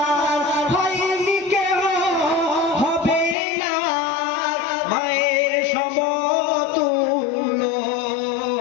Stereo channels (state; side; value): drops out; right; at 3.4 s